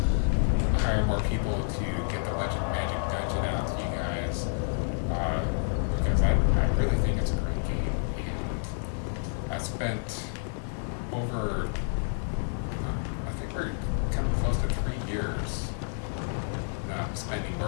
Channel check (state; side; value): silent; right; digital silence